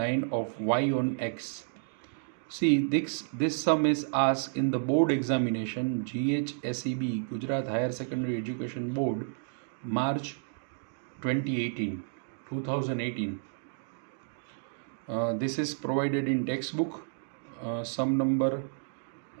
of y on x. See, this sum is asked in the board examination, GHSEB, Gujarat Higher Secondary Education Board, March 2018. This is provided in textbook, sum number,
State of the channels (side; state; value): left; silent; digital silence